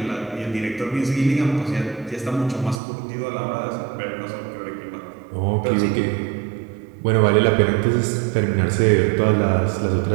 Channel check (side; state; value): left; drops out; at 2.8 s